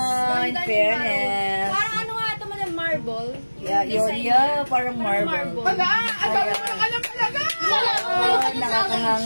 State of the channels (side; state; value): both; inverted; correlation -1.00